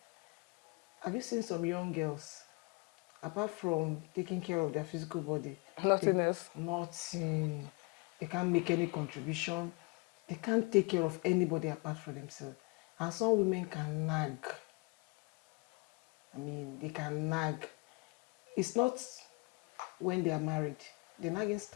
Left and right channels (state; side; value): quieter; right; 28.6 dB